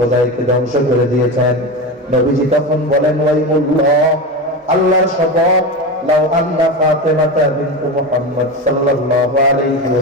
ধ্বংস করে দিয়েছেন। নবীজি তখন বলেন, ওয়াইমুল্লাহ, আল্লাহর শপথ, লাউ আন্না ফাতিমাতা বিনত মুহাম্মদ সাল্লাল্লাহু আলাইহি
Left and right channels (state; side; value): normal; both; correlation 0.22